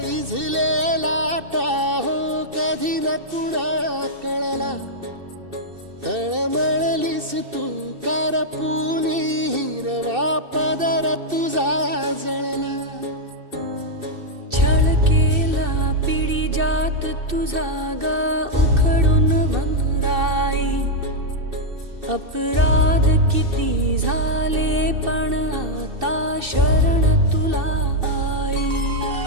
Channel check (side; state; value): left; late; 2.6 ms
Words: इझलेला Tahoe कधी न कुणा कळला तळमळलीस तू करपुनी हिरवा पदर तुझा जळला छळ केला पिढी जात तुझा ग उखडून वनराई अपराध किती झाले पण आता शरण